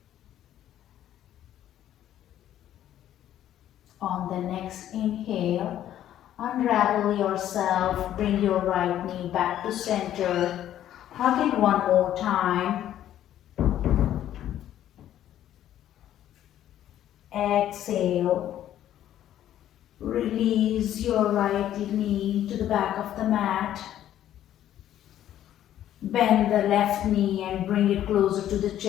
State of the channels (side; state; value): right; quieter; 11.7 dB